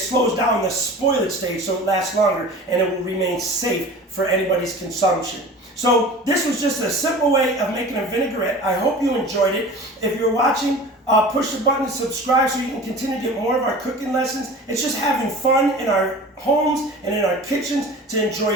down the spoilage stage, so it lasts longer, and it will remain safe for anybody's consumption. So this was just a simple way of making a vinaigrette. I hope you enjoyed it. If you're watching, push the button to subscribe so you can continue to get more of our cooking lessons. It's just having fun in our homes and in our kitchens to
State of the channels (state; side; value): normal; both; correlation 0.38